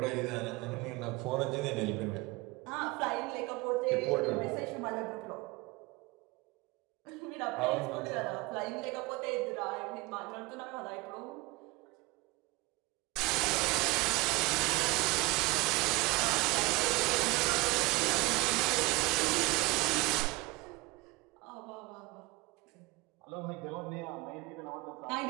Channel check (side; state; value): left; quieter; 23.4 dB